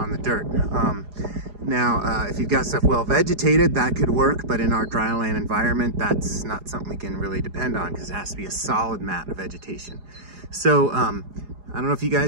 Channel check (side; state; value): left; late; 4.8 ms